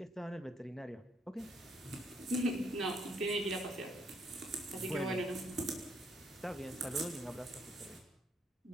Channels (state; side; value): normal; both; correlation 0.71